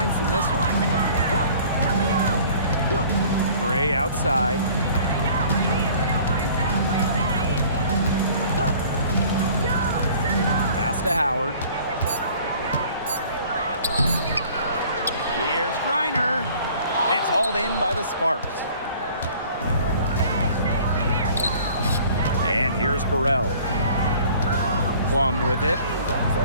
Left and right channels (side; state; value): both; inverted; correlation -0.51